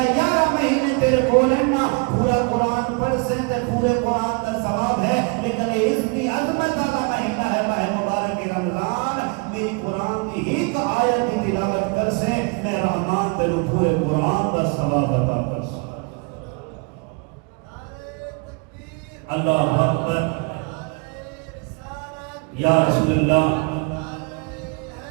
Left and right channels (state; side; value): quieter; left; 32.0 dB